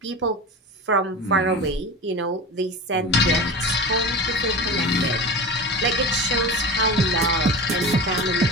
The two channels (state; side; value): normal; both; correlation 0.30